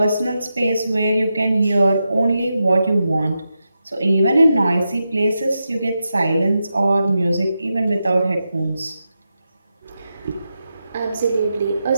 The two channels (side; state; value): both; inverted; correlation -0.88